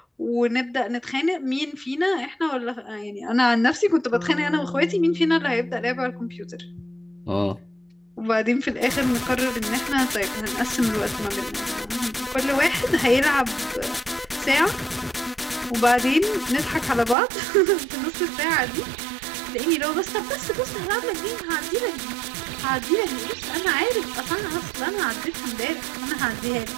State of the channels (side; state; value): left; drops out; at 17.2 s